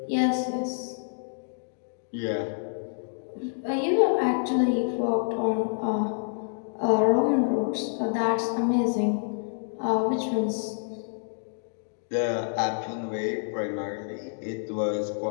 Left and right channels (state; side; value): silent; right; digital silence